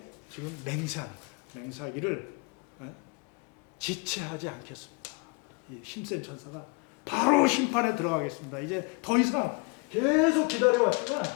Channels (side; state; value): right; quieter; 32.0 dB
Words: 지금 맹세하는 거예요. 맹세하기를 지체하지 않겠습니다. 이 힘센 천사가 바로 심판에 들어가겠습니다. 이제 더 이상 계속 기다려왔지만